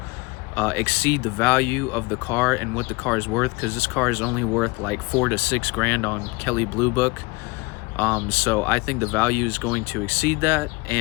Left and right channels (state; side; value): quieter; right; 24.9 dB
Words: exceed the value of the car and what the car is worth, because this car is only worth like $4 to $6 grand on Kelley Blue Book. So I think the value is going to exceed that,